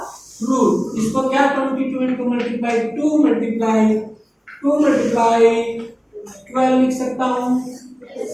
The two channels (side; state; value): both; identical; correlation 1.00